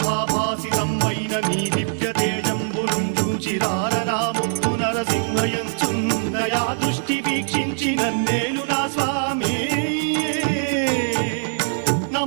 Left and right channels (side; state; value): left; silent; digital silence